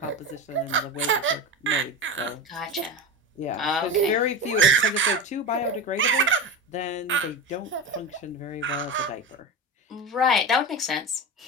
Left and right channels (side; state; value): both; normal; correlation 0.25